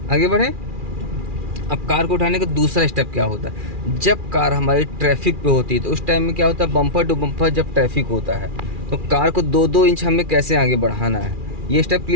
आगे बढ़े। अब कार को उठाने का दूसरा स्टेप क्या होता है, जब कार हमारी ट्रैफिक पे होती है तो उस टाइम में क्या होता है, बम्पर टू बम्पर जब ट्रैफिक होता है तो कार को 2-2 इंच हमें कैसे आगे बढ़ाना है, ये स्टेप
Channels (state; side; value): late; left; 2.4 ms